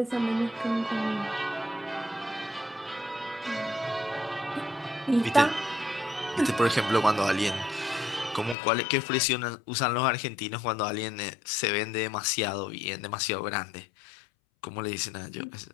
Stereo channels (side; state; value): right; drops out; at 8.6 s